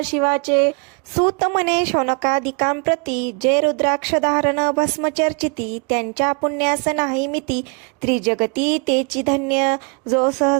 शिवाचे. सूत म्हणे शौनकादिकां प्रती जे रुद्राक्ष धारण भस्म चर्चिती त्यांच्या पुण्यास नाही मिती त्रिजगती तेची धन्य जो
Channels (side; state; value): left; quieter; 34.5 dB